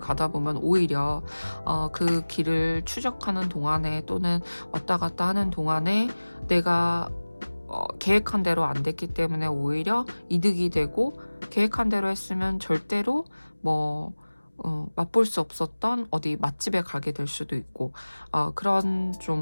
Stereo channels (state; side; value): inverted; both; correlation -1.00